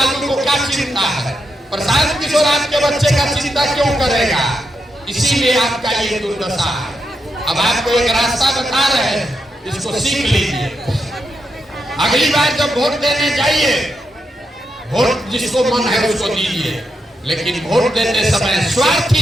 को क्या चिंता है? प्रशांत किशोर आपके बच्चे का चिंता क्यों करेगा? इसीलिए आपका ये दुर्दशा है। अब आपको एक रास्ता बता रहे हैं, इसको सीख लीजिए। अगली बार जब वोट देने जाइए, वोट जिसको मन है उसको दीजिए, लेकिन वोट देते समय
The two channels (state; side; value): normal; both; correlation 0.84